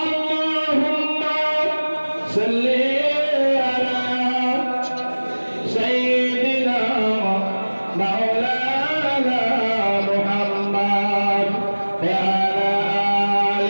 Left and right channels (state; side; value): inverted; both; correlation -1.00